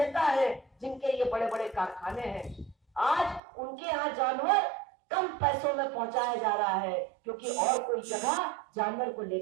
हैं, जिनके ये बड़े बड़े कारखाने हैं। आज उनके यहाँ जानवर कम पैसों में पहुंचाया जा रहा है, क्योंकि और कोई जगह जानवर को ले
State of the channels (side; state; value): left; drops out; at 3.4 s